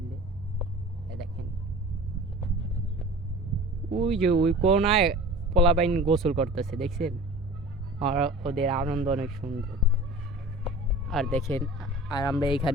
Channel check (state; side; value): normal; both; correlation 0.40